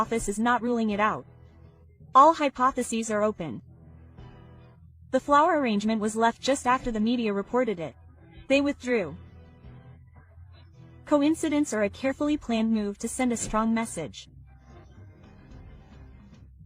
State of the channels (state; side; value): identical; both; correlation 1.00